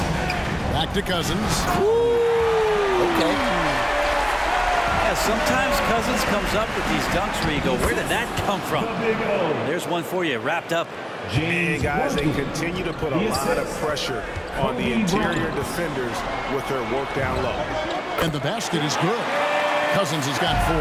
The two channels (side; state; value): both; identical; correlation 1.00